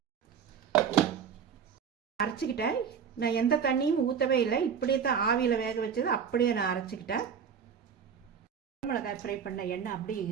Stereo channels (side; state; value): left; quieter; 7.2 dB